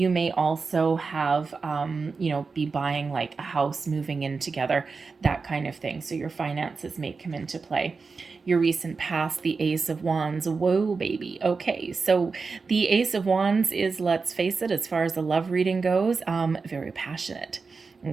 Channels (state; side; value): quieter; left; 4.6 dB